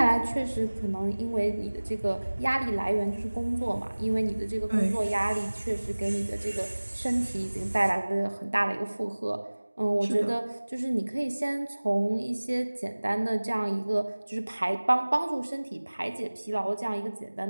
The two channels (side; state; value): both; inverted; correlation -1.00